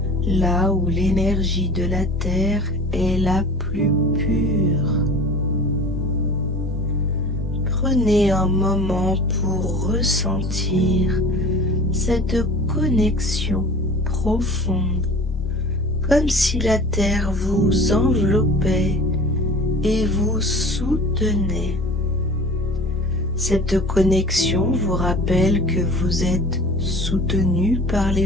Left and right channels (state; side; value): normal; both; correlation 0.41